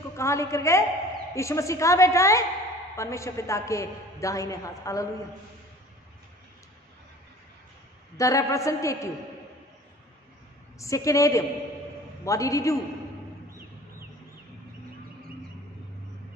कहां लेकर गए? यीशु मसीह कहां बैठा है? परमेश्वर पिता के दाहिने हाथ। Hallelujah. The representative second Adam, what did he do?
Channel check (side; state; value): both; normal; correlation 0.46